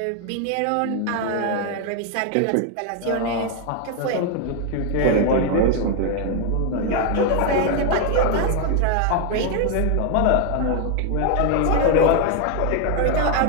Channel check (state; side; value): different; both; correlation 0.01